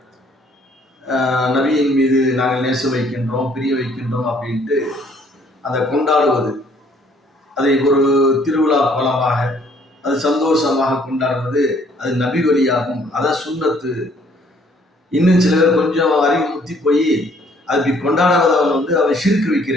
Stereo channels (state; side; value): normal; both; correlation 0.62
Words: நபியின் மீது நாங்கள் நேசம் வைக்கின்றோம், பிரிய வைக்கின்றோம் அப்படின்ட்டு அதை கொண்டாடுவது, அதை ஒரு திருவிழா கோலமாக, அது சந்தோஷமாக கொண்டாடுவது, அது நபி வழியாகும். அதான் சுன்னத்து. இன்னும் சில பேர் கொஞ்சம் அறிவு முத்தி போய் அது இப்படி கொண்டாடாதவன் அவன் ஷிர்க்